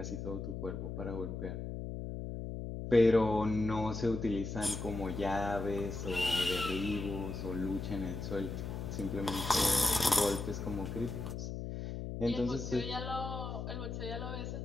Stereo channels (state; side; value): noise; left; hum, 5 dB below the sound